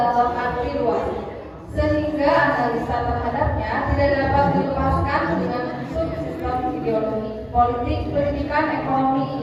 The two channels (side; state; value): both; identical; correlation 1.00